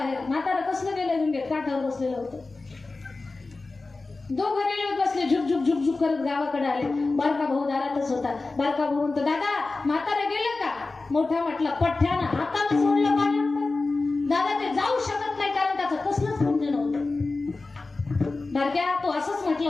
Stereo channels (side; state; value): right; quieter; 3.5 dB